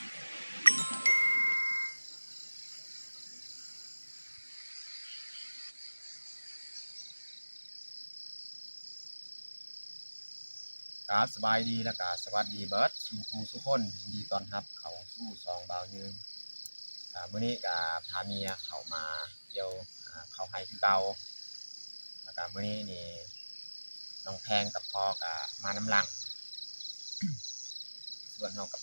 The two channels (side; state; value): both; inverted; correlation -1.00